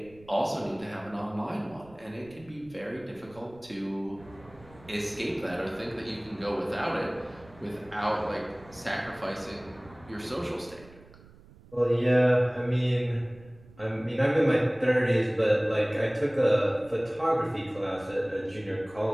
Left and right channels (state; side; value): noise; right; rumble, 23 dB below the sound